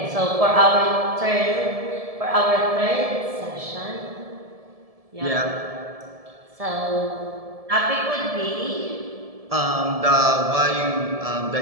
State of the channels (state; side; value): late; left; 1.7 ms